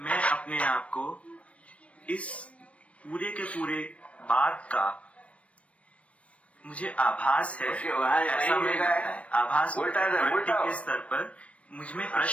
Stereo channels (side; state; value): right; late; 0.063 ms